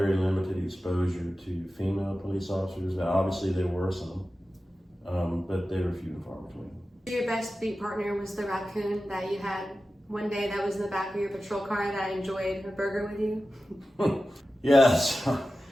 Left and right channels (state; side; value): normal; both; correlation 0.94